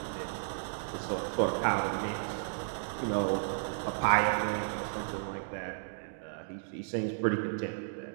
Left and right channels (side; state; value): left; silent; digital silence